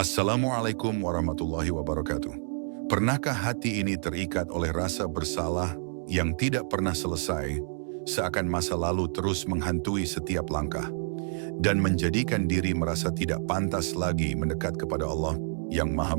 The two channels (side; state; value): left; silent; 59 dB below the other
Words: warahmatullahi wabarakatuh. Pernahkah hati ini terikat oleh rasa bersalah yang tidak pernah selesai, seakan masa lalu terus menghantui setiap langkah, dan menjadikan diri merasa tidak pantas lagi mendekat kepada Allah yang Maha